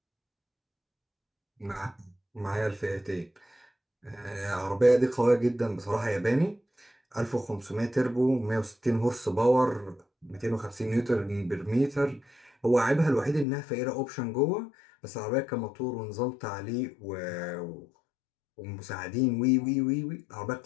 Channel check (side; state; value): right; drops out; at 13.5 s